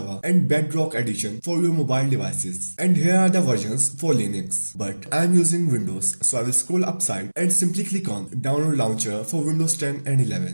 and Bedrock edition for your mobile device. And here are the versions for Linux, but I am using Windows, so I will scroll upside and simply click on download launcher for Windows 10 and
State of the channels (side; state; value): both; inverted; correlation -1.00